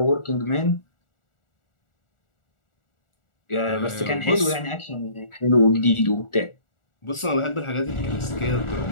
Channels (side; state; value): right; late; 1.4 ms